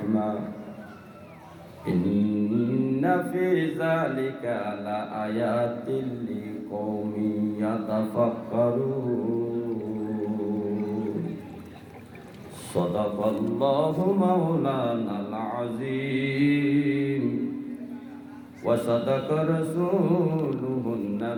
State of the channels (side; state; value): both; identical; correlation 1.00